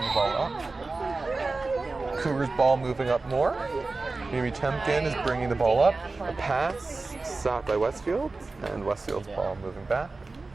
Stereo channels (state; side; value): quieter; left; 3.6 dB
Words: the ball up. Cougars ball moving up more. Mimi Temkin is bringing the ball up. A pass, stopped by Westfield, and Westfield's ball moving back.